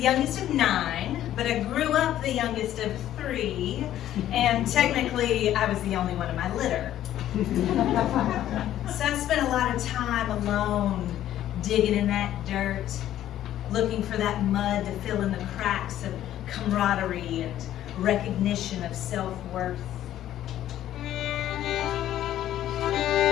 youngest of 9, but I grew up the youngest of 3, and technically I was the only one in my litter. So I spent a lot of time alone, digging in that dirt, looking for that mud to fill in the cracks of camaraderie and recognition of self-worth.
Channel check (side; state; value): right; quieter; 12.3 dB